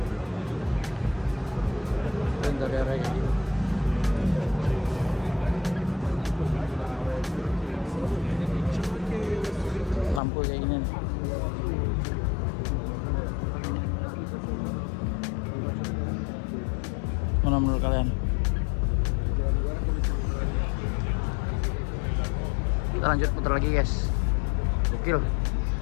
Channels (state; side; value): drops out; right; at 10.2 s